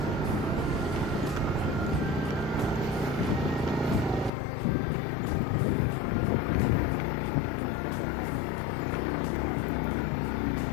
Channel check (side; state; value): right; drops out; at 4.3 s